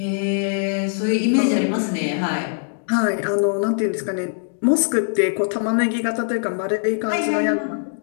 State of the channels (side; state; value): right; silent; digital silence